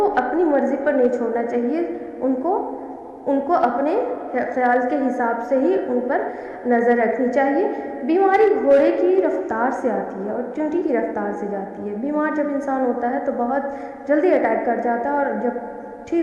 अपनी मर्ज़ी पर नहीं छोड़ना चाहिए। उनको अपने ख्याल के हिसाब से ही उन पर नज़र रखनी चाहिए। बीमारी घोड़े की रफ्तार से आती है और चींटी की रफ्तार से जाती है। बीमार जब इंसान होता है तो बहुत जल्दी अटैक कर जाता है, और जब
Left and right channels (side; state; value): both; identical; correlation 1.00